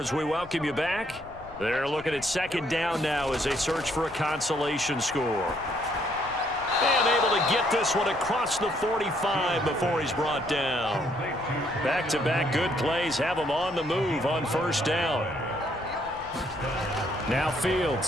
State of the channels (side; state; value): left; noise; rumble, 20 dB below the sound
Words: we welcome you back. They're looking at 2nd down now as they search for a consolation score. And able to get this one across the 45 before he's brought down. Back-to-back good plays have him on the move on 1st down. Now